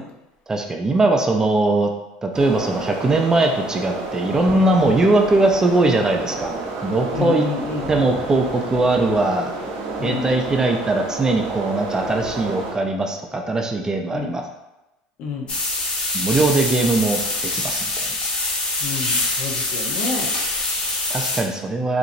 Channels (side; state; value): both; normal; correlation 0.63